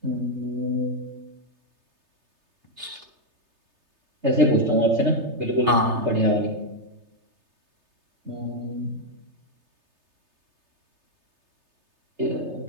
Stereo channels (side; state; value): left; late; 3.3 ms